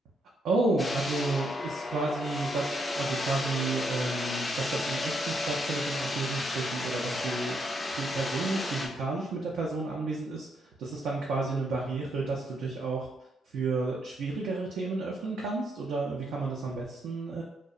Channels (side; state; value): both; normal; correlation 0.76